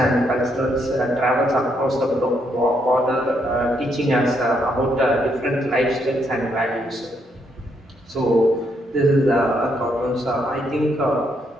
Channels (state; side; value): normal; both; correlation 0.75